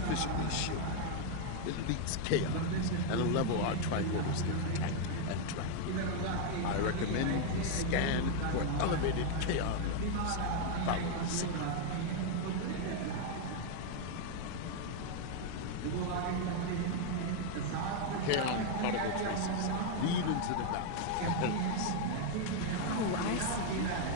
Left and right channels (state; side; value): different; both; correlation 0.00